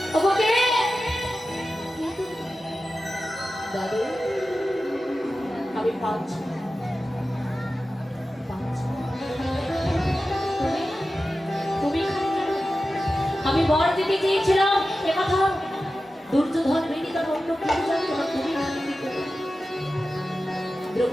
ওকে দাদু, আমি পাচ্ছি তুমি আমি বর দিতে চেয়েছিলাম, একথা দুর্যোধন বেদি তার অন্য কেউ জানতো না, তুমি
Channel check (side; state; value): both; normal; correlation 0.93